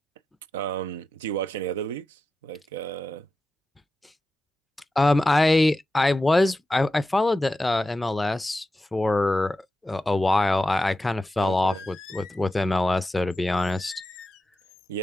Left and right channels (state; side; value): normal; both; correlation 0.91